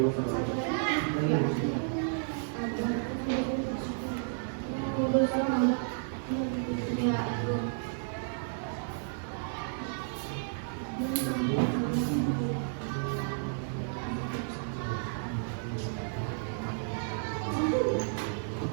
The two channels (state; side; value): silent; left; digital silence